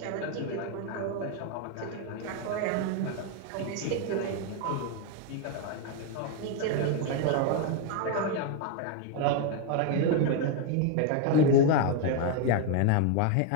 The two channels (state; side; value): different; both; correlation 0.01